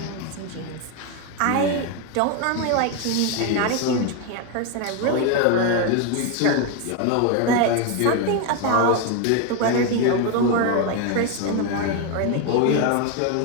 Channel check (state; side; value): different; both; correlation 0.02